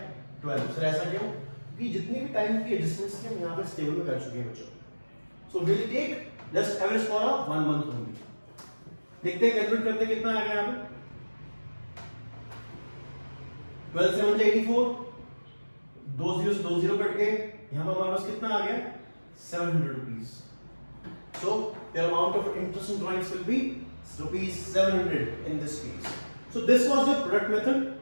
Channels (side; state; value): both; inverted; correlation -1.00